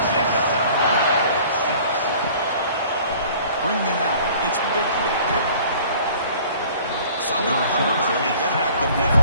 Bringing it out. It's Bickley. Solid coverage there. They get it at the 15.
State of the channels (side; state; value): both; inverted; correlation -0.50